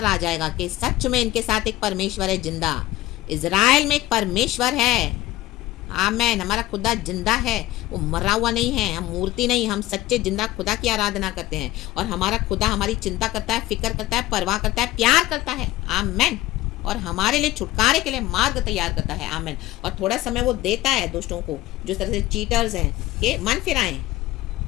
आ जाएगा कि सच में इनके साथ एक परमेश्वर है जिंदा। इजराइल में एक परमेश्वर है। आमेन। हमारा खुदा जिंदा है, वो मरा हुआ नहीं है। हम मूर्ति नहीं, हम सच्चे जिंदा खुदा की आराधना करते हैं। और हमारा खुदा हमारी चिंता करता है, फिक्र करता है, परवाह करता है, प्यार करता है। आमेन। और हमारे लिए छुटकारे के लिए मार्ग तैयार करता है। आमेन। और थोड़ा समय वो देता है दोस्तों को, जो तरह से चीटर्स हैं, कि मन फिराएं।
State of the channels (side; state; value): right; quieter; 16.5 dB